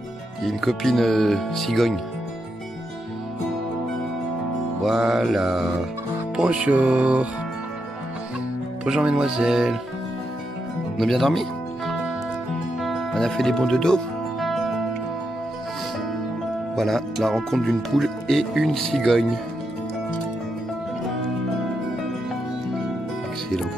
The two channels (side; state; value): both; normal; correlation 0.83